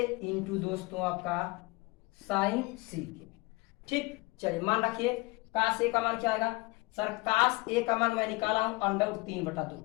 इंटू दोस्तों आपका साइन c। ठीक, चलिए मान रखिए cos a का मान क्या आएगा सर, cos a का मान मैं निकाला हूं √3/2,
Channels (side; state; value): right; quieter; 24.5 dB